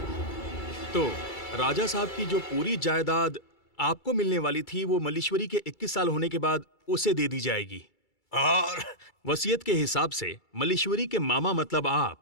तो राजा साहब की जो पूरी जायदाद आपको मिलने वाली थी वो मल्लीश्वरी के 21 साल होने के बाद उसे दे दी जाएगी। और वसीयत के हिसाब से मल्लीश्वरी के मामा मतलब आप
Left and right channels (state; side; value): late; right; 2.3 ms